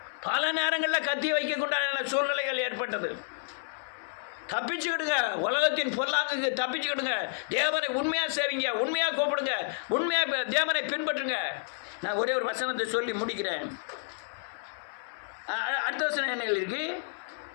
பல நேரங்களில் கத்தியை வைக்கக்கூடாத சூழ்நிலைகள் ஏற்பட்டது. தப்பிச்சுக்கிடுங்க, உலகத்தின் பொருளாக்கு தப்பிச்சுக்கிடுங்க. தேவனை உண்மையாக சேவிங்க, உண்மையாக கூப்பிடுங்க, உண்மையாக தேவனை பின்பற்றுங்க. நான் ஒரே ஒரு வசனத்தை சொல்லி முடிக்கிறேன். அடுத்த வசனம் என்ன இருக்கு?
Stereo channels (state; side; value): silent; right; 58 dB below the other